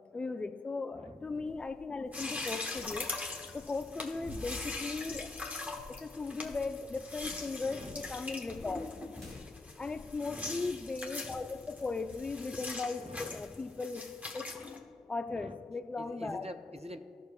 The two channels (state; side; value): quieter; right; 3.2 dB